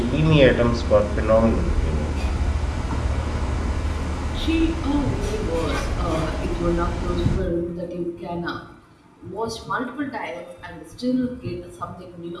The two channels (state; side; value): identical; both; correlation 1.00